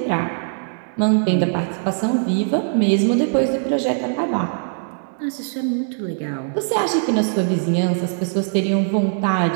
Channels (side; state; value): left; silent; digital silence